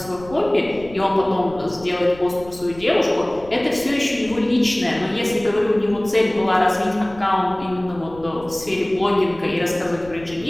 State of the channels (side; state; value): left; noise; rumble, 20 dB below the sound